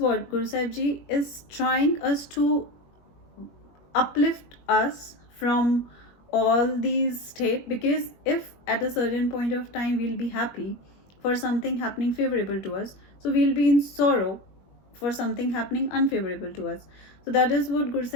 Guru Sahib Ji is trying us to uplift us from all these state, because if at a certain point of time we'll be happy for something happening favorable to us, so we'll be in sorrow for something happening unfavorable to us. So that is what Guru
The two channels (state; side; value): late; right; 21 ms